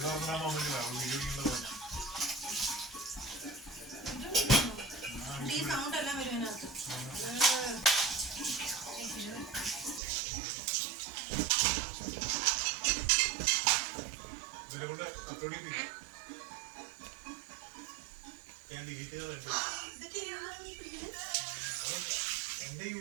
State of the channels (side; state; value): left; drops out; at 10.0 s